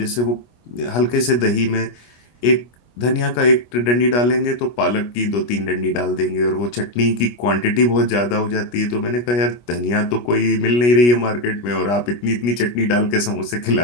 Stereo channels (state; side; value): late; right; 25 ms